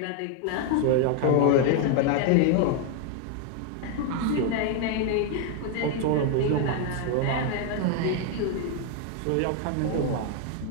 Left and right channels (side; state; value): both; different; correlation 0.00